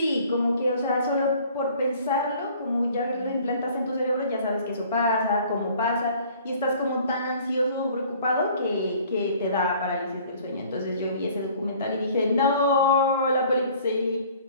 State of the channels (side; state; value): both; inverted; correlation -0.53